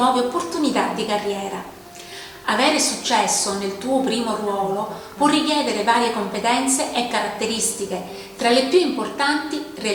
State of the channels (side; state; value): both; identical; correlation 1.00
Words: opportunità di carriera. Avere successo nel tuo primo ruolo può richiedere varie competenze e caratteristiche. Tra le più importanti,